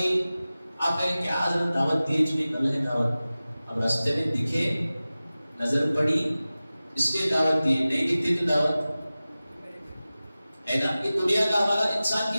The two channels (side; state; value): both; inverted; correlation -0.96